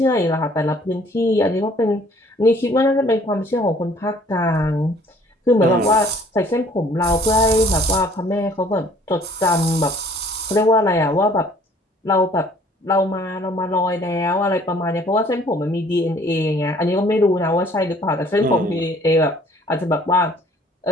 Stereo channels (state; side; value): normal; both; correlation 0.57